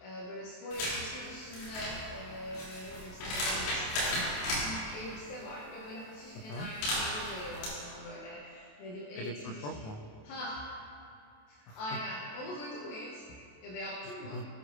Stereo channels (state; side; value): late; right; 28 ms